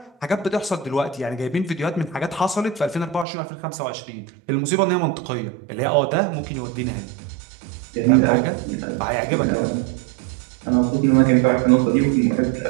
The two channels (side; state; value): left; drops out; at 3.2 s